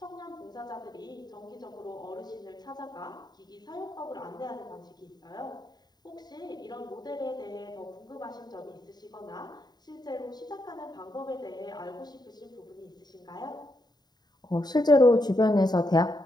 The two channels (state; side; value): late; right; 0.20 ms